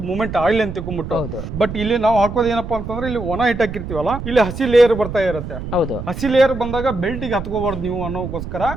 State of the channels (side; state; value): right; noise; rumble, 8 dB below the sound